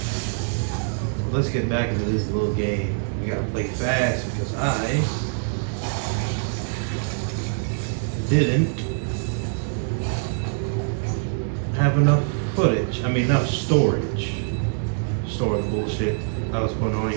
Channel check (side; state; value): left; silent; 62 dB below the other